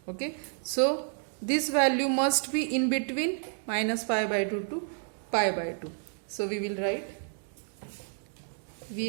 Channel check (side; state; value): left; silent; 58 dB below the other